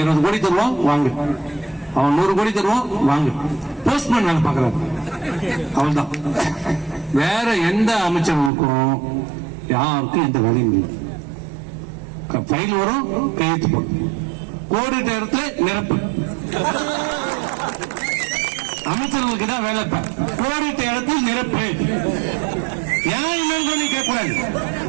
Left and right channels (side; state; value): left; drops out; at 8.5 s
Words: 20 கோடி தருவான் வாங்க, அவன் 100 கோடி தருவான் வாங்க. போஸ்ட்மேன் வேலை பார்க்கறாரு, அவள்தான். வேற எந்த அமைச்சருக்கும் யாருக்கும் எந்த வேலையும் இல்லை. மைல் வரும், கையெழுத்து போடும். கோடிட்ட இடத்துல நிரப்பு. அமைச்சர்களுக்கு தான் வேலை. கோடிட்ட இடத்தில் நிரப்பு. ஏன் என்னன்னு நீ கேட்க கூடாது.